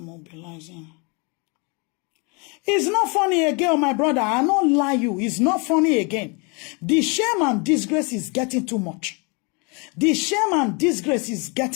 It's not funny again, my brother. I don't lie you. It's not funny again. The shame and disgrace is getting too much. The shame and disgrace is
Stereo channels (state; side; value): quieter; right; 31.7 dB